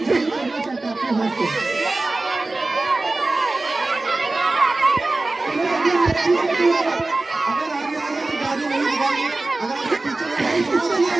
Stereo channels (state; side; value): quieter; left; 3.1 dB